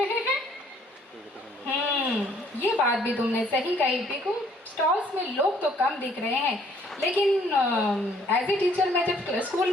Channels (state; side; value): normal; both; correlation 0.62